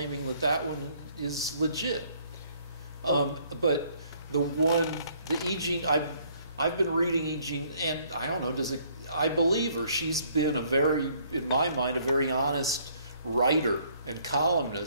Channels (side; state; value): both; inverted; correlation -0.64